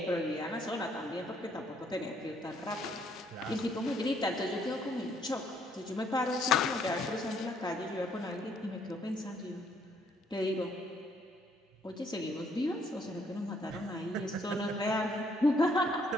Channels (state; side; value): normal; both; correlation 0.68